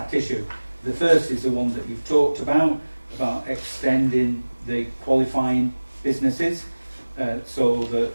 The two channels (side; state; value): both; inverted; correlation -1.00